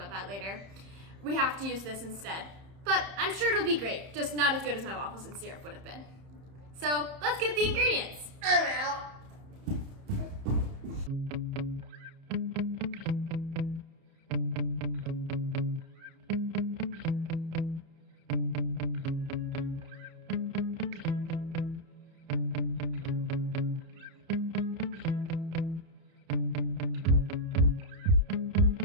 that later, we have to use this instead. But I'm sure it'll be great, just not as good as my waffles and syrup would have been. So let's get the ingredients. I'm out.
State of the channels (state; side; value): late; left; 30 ms